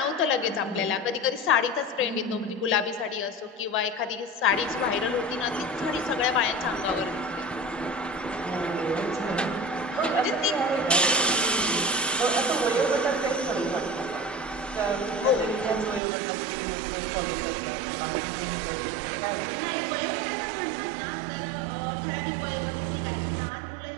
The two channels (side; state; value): left; drops out; at 16.0 s